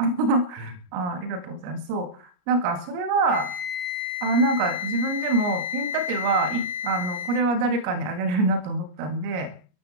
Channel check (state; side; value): late; left; 33 ms